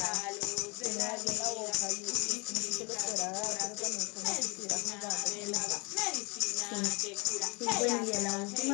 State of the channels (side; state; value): right; quieter; 29.6 dB